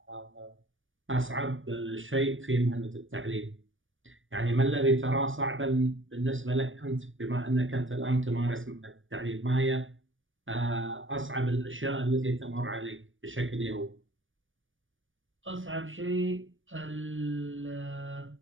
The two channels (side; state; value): left; late; 0.57 ms